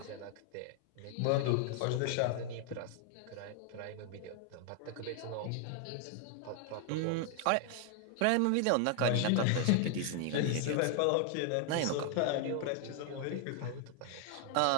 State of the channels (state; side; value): different; both; correlation 0.00